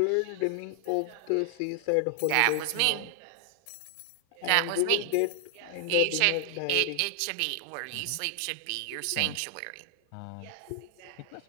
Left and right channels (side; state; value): both; different; correlation 0.00